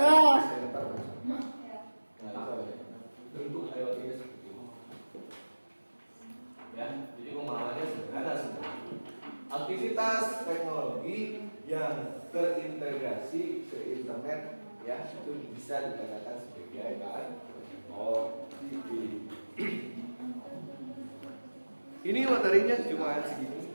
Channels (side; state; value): both; inverted; correlation -1.00